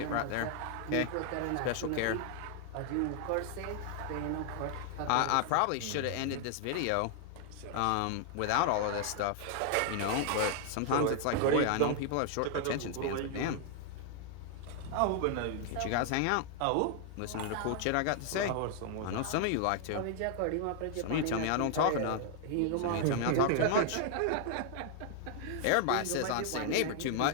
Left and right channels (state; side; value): different; both; correlation 0.00